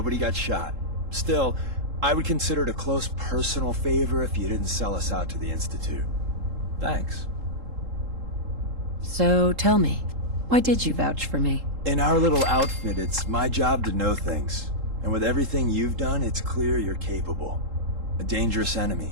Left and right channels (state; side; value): late; left; 3.7 ms